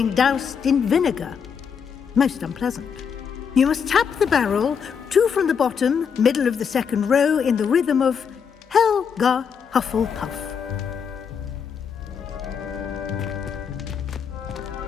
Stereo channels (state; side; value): quieter; right; 6.8 dB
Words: doused in vinegar. Most unpleasant. You must tap the barrel, 2 from the bottom, middle of the second row, in the rhythm of Helga Hufflepuff.